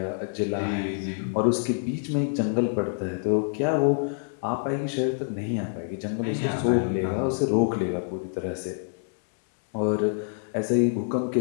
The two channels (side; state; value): right; silent; digital silence